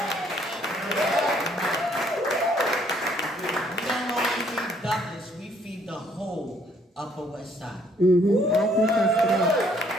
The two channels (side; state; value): both; normal; correlation 0.65